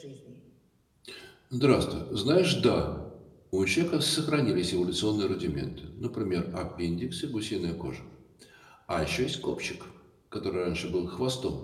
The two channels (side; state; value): both; identical; correlation 1.00